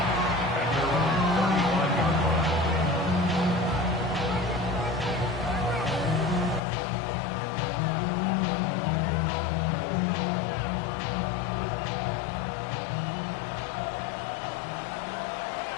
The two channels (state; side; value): drops out; right; at 6.6 s